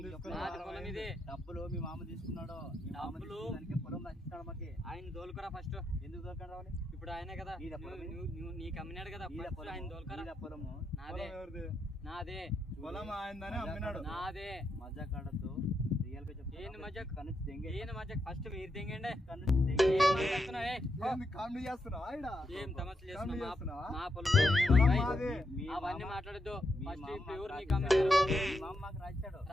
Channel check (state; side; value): normal; both; correlation 0.82